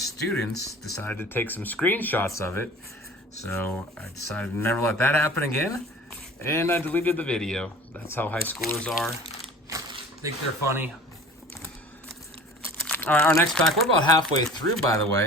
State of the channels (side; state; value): both; normal; correlation 0.42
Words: decided to take some screenshots of it. So I decided to never let that happen again, and I deleted the video. That's how high schoolers are. Think they're funny. All right, our next pack, we're about halfway through, by the